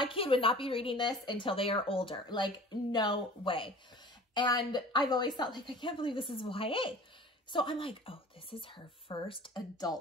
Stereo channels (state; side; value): normal; both; correlation 0.43